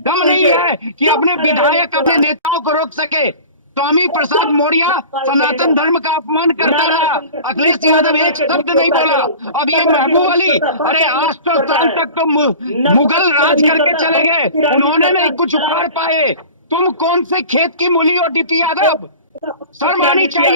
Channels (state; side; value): inverted; both; correlation -0.39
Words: दम नहीं है कि अपने विधायक, अपने नेताओं को रोक सके। स्वामी प्रसाद मौर्य सनातन धर्म का अपमान करता रहा, अखिलेश यादव एक शब्द नहीं बोला। अब ये महबूब अली, अरे 800 साल तक तो मुगल राज करके चले गए, उन्होंने नहीं कुछ उखाड़ पाए। तुम कौन से खेत की मूली हो डीपी यादव? शर्म आनी